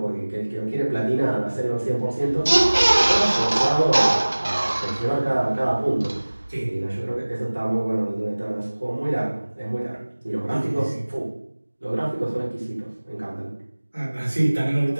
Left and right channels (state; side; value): inverted; both; correlation -1.00